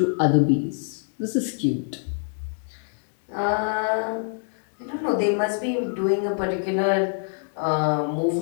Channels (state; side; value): silent; right; digital silence